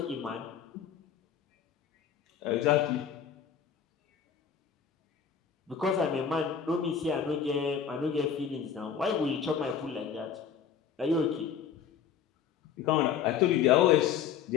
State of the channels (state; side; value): quieter; right; 7.6 dB